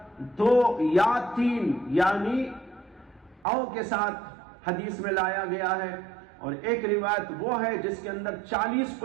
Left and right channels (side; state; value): left; drops out; at 3.5 s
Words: دو یا تین یعنی او کے ساتھ حدیث میں لایا گیا ہے، اور ایک روایت وہ ہے جس کے اندر 40